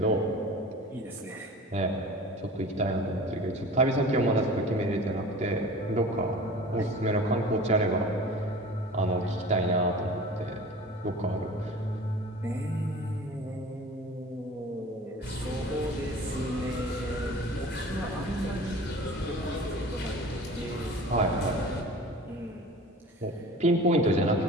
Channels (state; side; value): normal; both; correlation 0.40